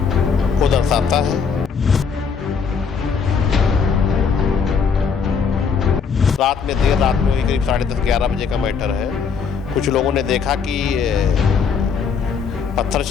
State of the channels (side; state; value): right; quieter; 6.0 dB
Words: को दर्शाता है। रात में देर रात में करीब 10:30-11 बजे का मैटर है। कुछ लोगों ने देखा कि पत्थर